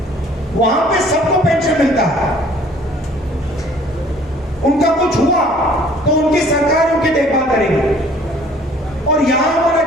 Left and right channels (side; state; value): both; normal; correlation 0.55